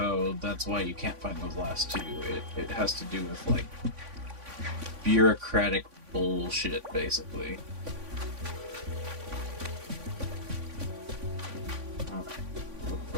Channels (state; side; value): late; left; 3.5 ms